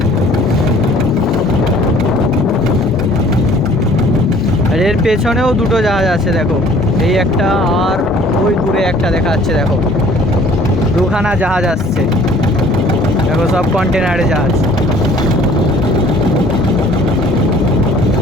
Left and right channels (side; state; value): both; normal; correlation 0.54